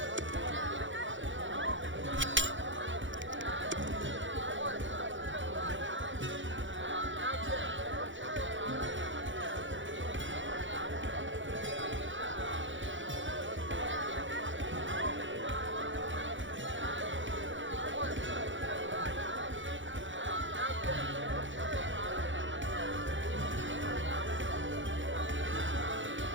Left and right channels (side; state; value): left; late; 0.55 ms